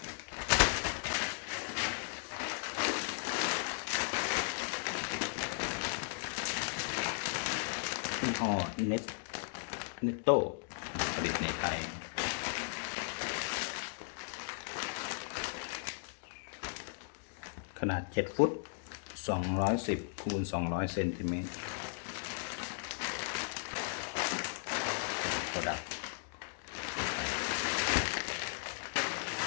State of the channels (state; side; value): silent; right; digital silence